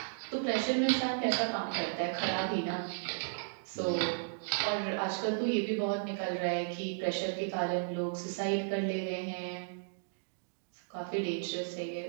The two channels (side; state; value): left; silent; digital silence